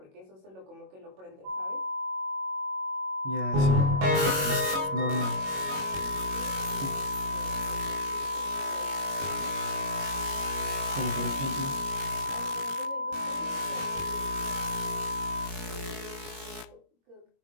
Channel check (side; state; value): left; late; 22 ms